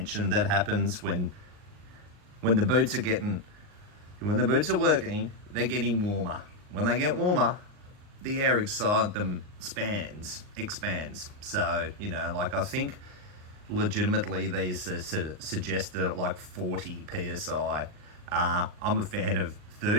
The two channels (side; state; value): left; late; 39 ms